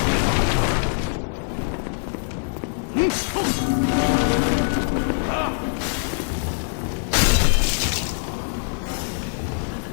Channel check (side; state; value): right; silent; 63 dB below the other